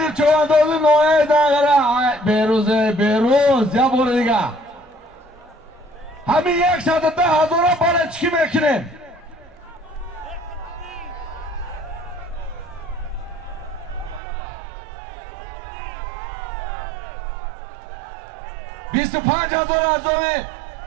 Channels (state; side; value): drops out; left; at 14.2 s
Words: چواندازی نوعه دنگره بیروز یا بور دیگه همین 110,000 بالا چی میکنیم 25,000 از دومی